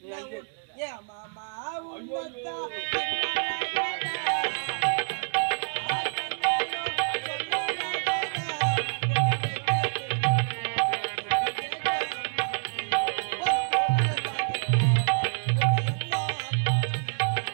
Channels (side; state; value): left; silent; digital silence